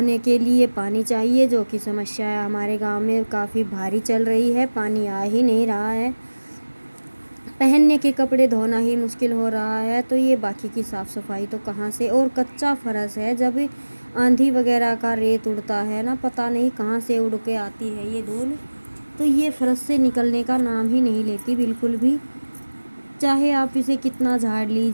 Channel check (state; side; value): inverted; both; correlation -1.00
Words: के लिए पानी चाहिए, जो कि समस्या है हमारे गांव में काफ़ी भारी चल रही है, पानी आ ही नहीं रहा है। पहनने के कपड़े धोना ही मुश्किल हो रहा है, तो ये बाकी की साफ़ सफाई तो कहाँ से। और कच्चा फर्श है, जब आंधी वगैरह का रेत उड़ता है ना, पता नहीं कहाँ से उड़ के आती है ये धूल, तो ये फर्श से निकलने का नाम ही नहीं लेती बिल्कुल भी। चाहे आप इसे कितना झाड़